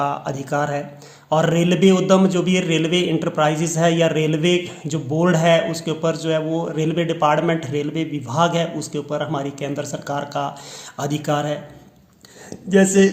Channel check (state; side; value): identical; both; correlation 1.00